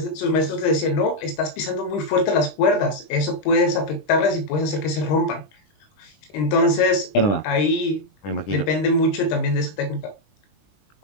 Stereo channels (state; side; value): late; right; 20 ms